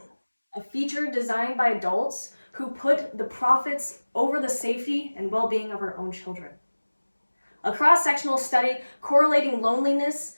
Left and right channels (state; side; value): inverted; both; correlation -1.00